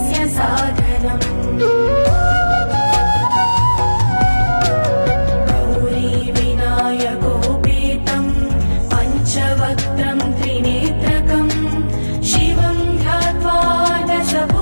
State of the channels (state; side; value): inverted; both; correlation -1.00